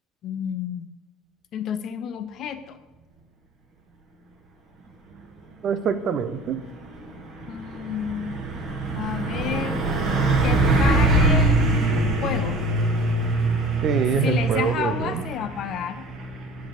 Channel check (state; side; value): normal; both; correlation 0.43